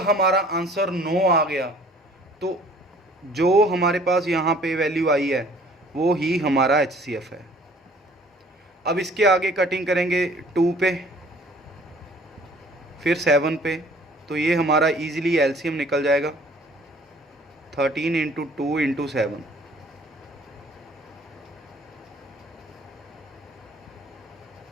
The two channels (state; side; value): normal; both; correlation 0.54